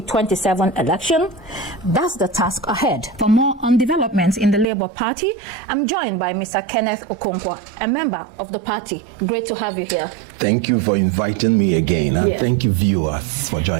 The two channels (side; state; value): left; drops out; at 4.7 s